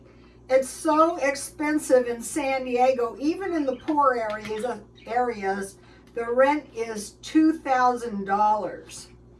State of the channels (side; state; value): both; identical; correlation 1.00